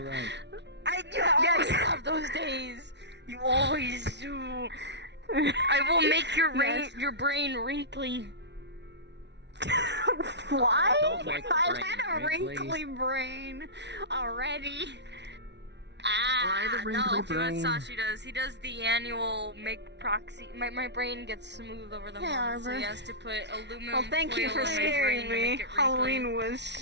right. You always have those days. You always do. I will make your brain wrinkly. Why? Don't make the I've brain had a wrinkly brain already. No, do what Sashi does. He does the annual make proxy. My brain gets smooth over the month, so he has to put aluminum Well, thank you foil for in my scaring brain to me. make it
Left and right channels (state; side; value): late; left; 0.50 ms